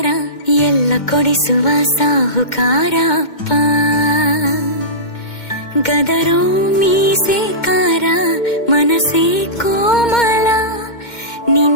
ಎಲ್ಲ ಕೊಡಿಸುವ ಸಾಹುಕಾರ ಅಪ್ಪ. ಗದರೋ ಮೀಸೆಕಾರ, ಮನಸ್ಸೇ ಕೋಮಲ,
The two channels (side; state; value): right; late; 2.1 ms